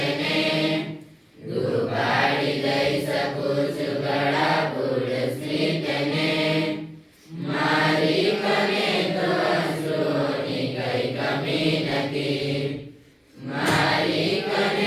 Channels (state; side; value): identical; both; correlation 1.00